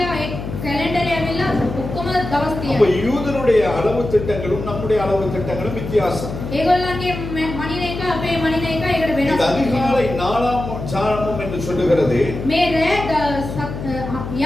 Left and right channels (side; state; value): left; noise; hum, 7 dB below the sound